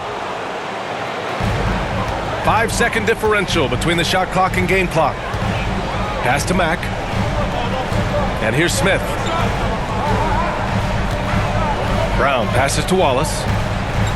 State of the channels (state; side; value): identical; both; correlation 1.00